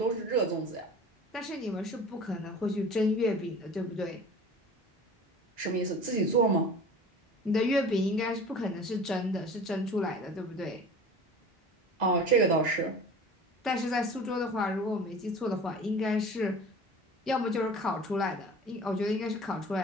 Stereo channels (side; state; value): both; normal; correlation 0.40